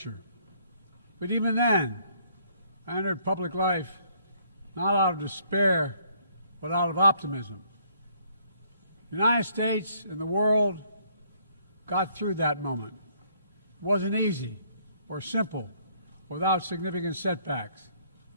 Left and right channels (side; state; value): both; inverted; correlation -0.65